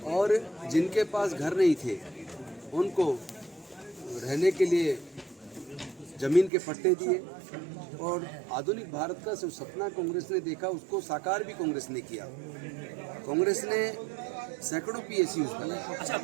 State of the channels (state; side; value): drops out; left; at 6.5 s